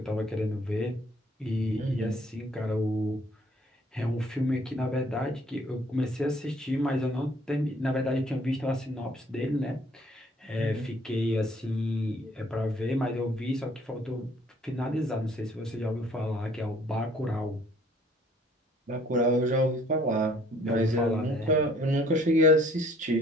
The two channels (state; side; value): normal; both; correlation 0.59